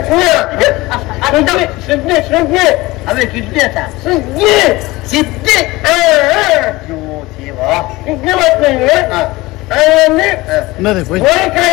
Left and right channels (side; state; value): right; quieter; 20.5 dB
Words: అవే కిడ్నీ అట సిద్ధి